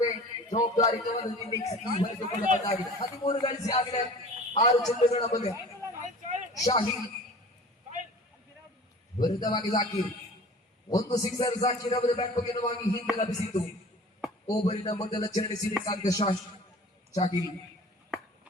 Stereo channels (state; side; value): normal; both; correlation 0.43